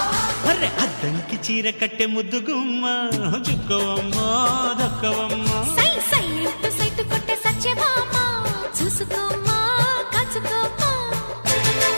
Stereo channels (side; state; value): both; inverted; correlation -1.00